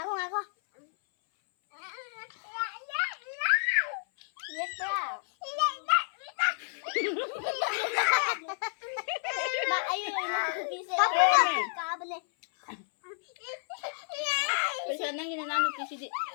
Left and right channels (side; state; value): right; silent; 57 dB below the other